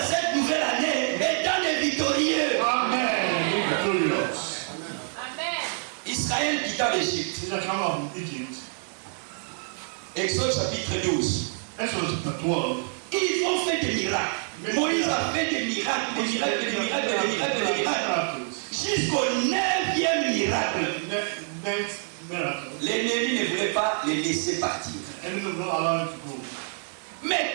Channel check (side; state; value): left; silent; 57 dB below the other